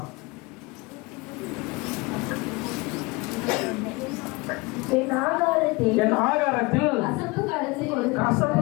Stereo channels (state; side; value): quieter; right; 25.0 dB